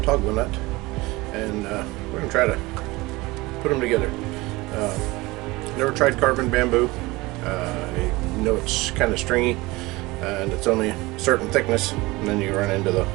nut, and we're going to try to put them together. Never tried carving bamboo. I know it's kind of stringy and it's only a certain thickness, and then you run into the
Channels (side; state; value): left; quieter; 21.7 dB